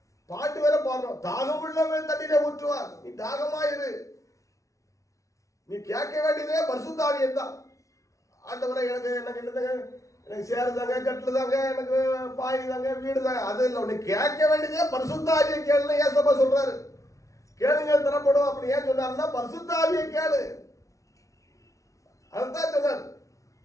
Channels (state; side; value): late; right; 0.16 ms